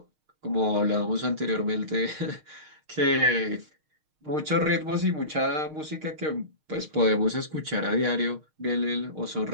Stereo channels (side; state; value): left; late; 6.5 ms